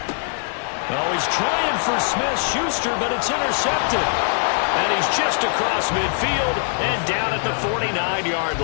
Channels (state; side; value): silent; right; digital silence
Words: Oh, he's trying for Smith-Schuster, but it's intercepted. And he's just across midfield and down at the 49-yard